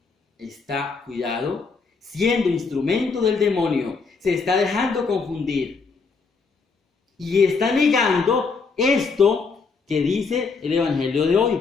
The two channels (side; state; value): right; quieter; 4.7 dB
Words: está, cuidado, siendo instrumento del demonio, se está dejando confundir y está negando esto que dice el Evangelio de